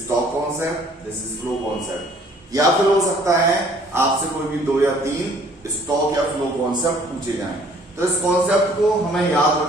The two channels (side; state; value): both; normal; correlation 0.57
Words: stock concept, this is flow concept, या फिर हो सकता है आपसे कोई भी 2 या 3 स्टॉक या फ्लो कॉन्सेप्ट पूछे जाएं। तो इस कॉन्सेप्ट को हमें याद